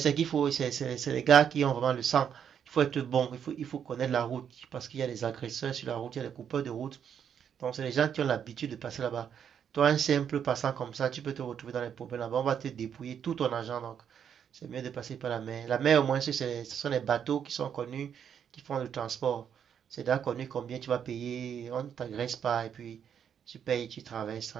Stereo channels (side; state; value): left; quieter; 8.2 dB